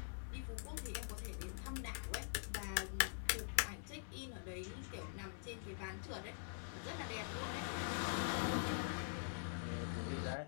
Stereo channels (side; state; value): right; silent; digital silence